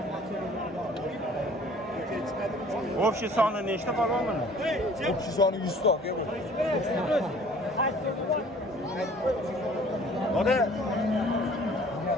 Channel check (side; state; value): both; normal; correlation 0.52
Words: Общий soni nechta polvon buni? Общий soni 100 ta aka bu. Oda